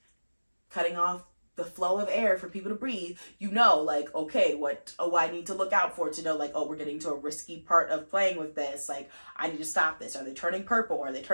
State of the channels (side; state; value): both; inverted; correlation -1.00